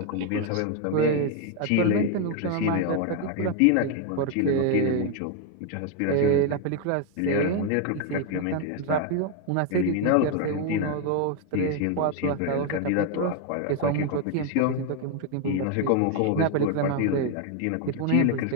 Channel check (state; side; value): different; both; correlation 0.01